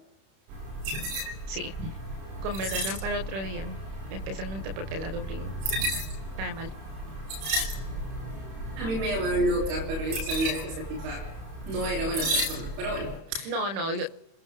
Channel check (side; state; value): left; late; 31 ms